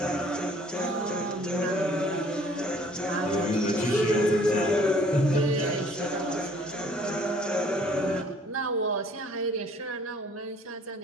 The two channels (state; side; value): normal; both; correlation 0.57